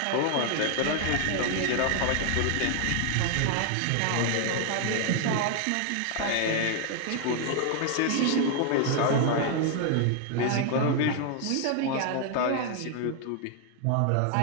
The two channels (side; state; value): both; different; correlation 0.00